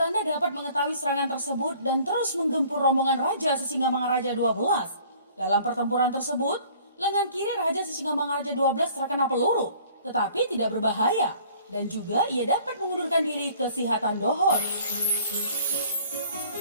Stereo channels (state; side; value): inverted; both; correlation -0.53